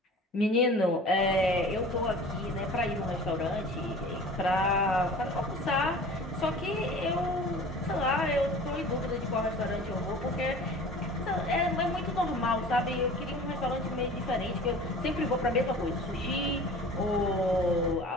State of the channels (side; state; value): both; normal; correlation 0.42